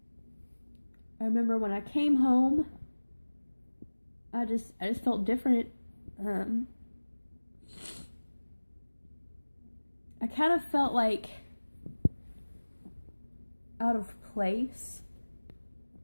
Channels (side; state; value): both; inverted; correlation -1.00